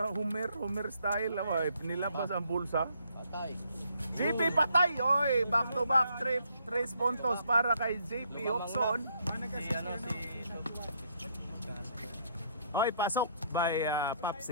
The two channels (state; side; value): inverted; both; correlation -0.69